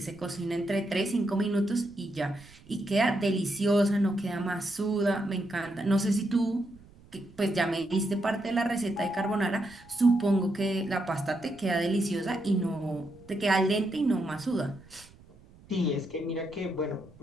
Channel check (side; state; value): right; noise; rumble, 24 dB below the sound